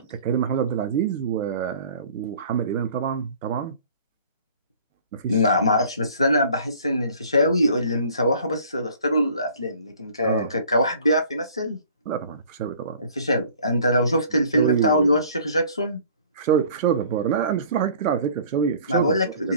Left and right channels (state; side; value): inverted; both; correlation -0.50